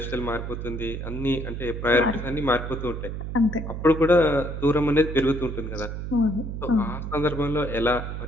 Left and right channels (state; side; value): noise; right; hum, 6 dB below the sound